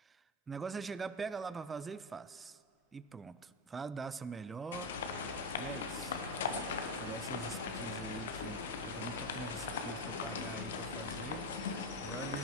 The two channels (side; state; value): both; normal; correlation 0.10